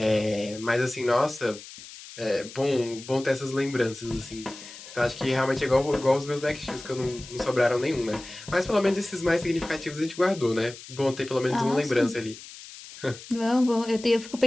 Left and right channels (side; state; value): left; noise; hiss, 16 dB below the sound